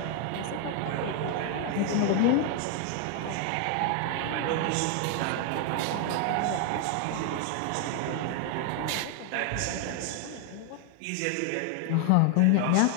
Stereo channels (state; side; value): different; both; correlation 0.00